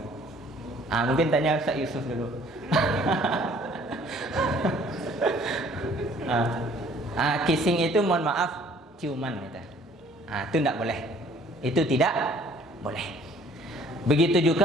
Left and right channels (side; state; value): both; normal; correlation 0.57